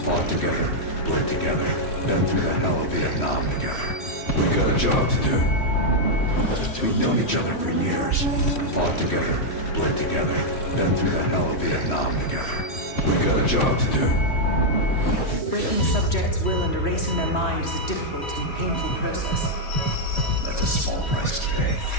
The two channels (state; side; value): late; right; 3.1 ms